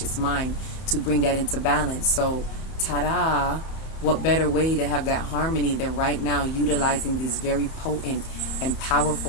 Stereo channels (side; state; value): right; late; 31 ms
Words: mind to bring that into balance. So, ta-da! What better way to have that harmony than right now utilizing these very potent and